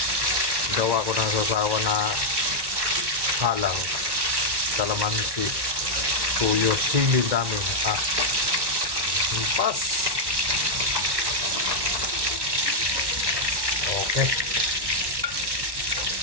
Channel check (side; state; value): left; late; 1.1 ms